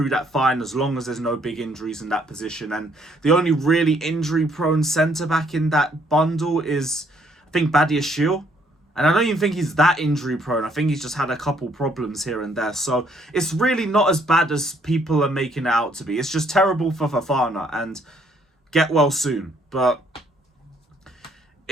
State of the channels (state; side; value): normal; both; correlation 0.67